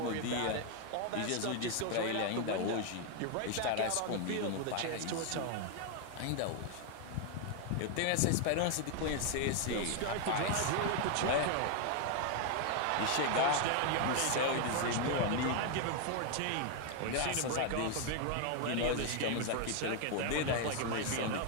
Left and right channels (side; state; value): both; different; correlation 0.01